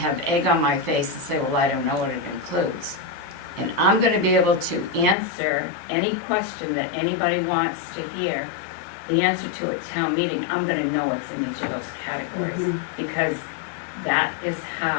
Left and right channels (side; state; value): right; drops out; at 5.2 s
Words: egg on my face and say, well, I don't know what it includes. And I'm gonna be able to answer any question that anybody wants to hear. The answer to a town meeting, I'm gonna know what's in each of those categories, because that is